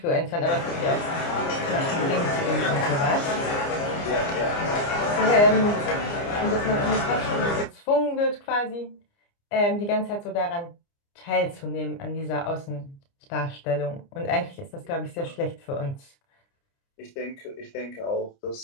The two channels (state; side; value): late; right; 29 ms